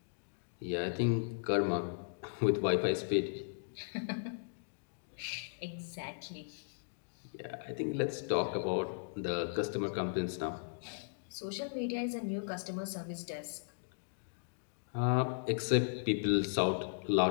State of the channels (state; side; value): silent; right; digital silence